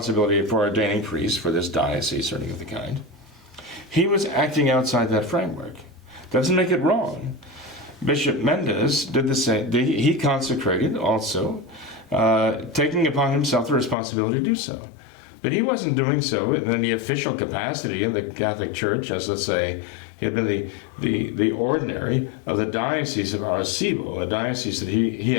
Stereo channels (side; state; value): right; drops out; at 14.0 s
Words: for ordaining priests for this diocese or anything of the kind. He was acting outside that framework. Doesn't make it wrong. Bishop Mendez did the same. He consecrated also, taking upon himself the responsibility to do so. But he wasn't doing so in any official capacity in the Catholic Church, as, let's say, he had been the ordinary of the Diocese of Arecibo, a diocese that he